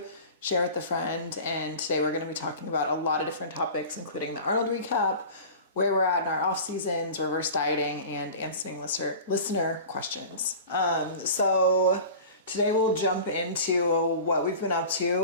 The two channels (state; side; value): inverted; both; correlation -0.37